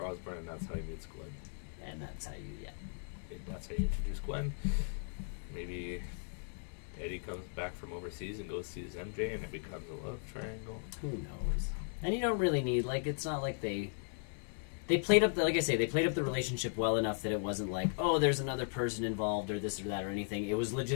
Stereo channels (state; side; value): silent; right; digital silence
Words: Osborn, and that's how he meets Gwen. And that's how you, That's how you introduce Gwen. Maybe Eddie comes back from overseas and goes sees MJ, and it becomes a love triangle. Who knows? And you don't really need, it's not like they played up, like I say, they played up the relationship well enough that it wasn't like, oh, there's another person involved or this or that or anything. It was